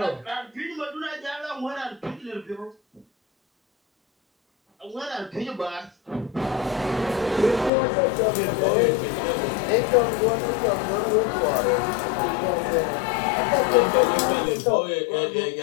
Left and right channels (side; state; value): right; drops out; at 7.7 s